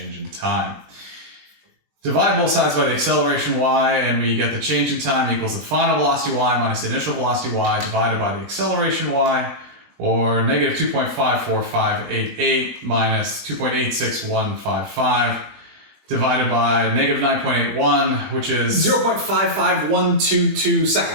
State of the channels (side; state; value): left; late; 20 ms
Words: in time. Divide both sides by the acceleration y, and we get the change in time equals the final velocity y minus the initial velocity y divided by the acceleration y, or negative 2.54588 minus 2.86155. Divided by negative 9.81, which is 0.55122